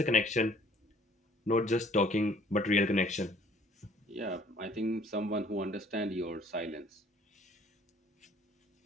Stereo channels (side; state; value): both; normal; correlation 0.58